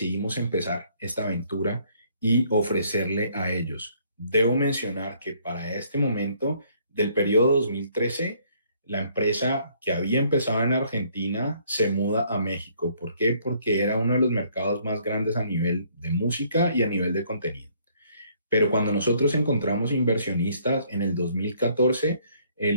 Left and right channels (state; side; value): inverted; both; correlation -0.64